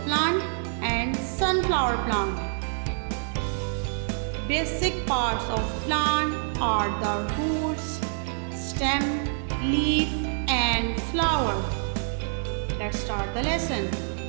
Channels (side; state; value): left; silent; digital silence